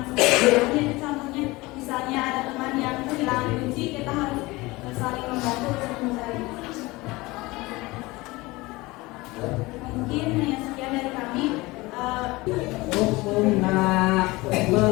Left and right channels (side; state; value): right; quieter; 21.7 dB